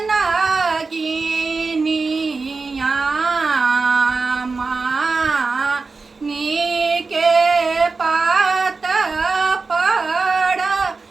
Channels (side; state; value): left; quieter; 4.2 dB